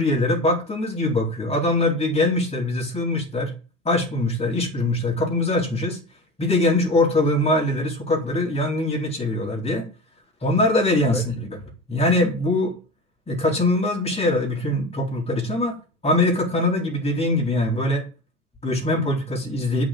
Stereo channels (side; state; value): both; normal; correlation 0.30